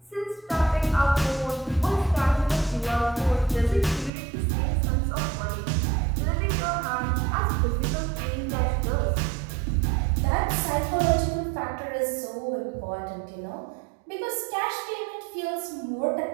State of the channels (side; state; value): left; drops out; at 4.1 s